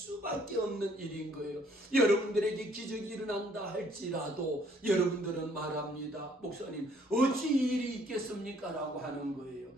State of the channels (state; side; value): normal; both; correlation 0.63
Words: 없는 일인 거예요. 여러분들에게 기적이 일어난다 할지라도 여러분들은 말합니다. 목사님, 어찌 일이 있겠습니까? 라고 하는 거예요.